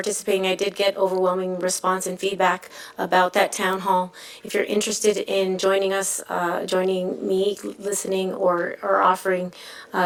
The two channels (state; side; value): identical; both; correlation 1.00